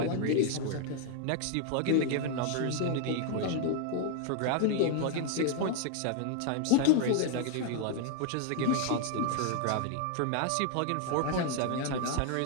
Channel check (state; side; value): different; both; correlation 0.00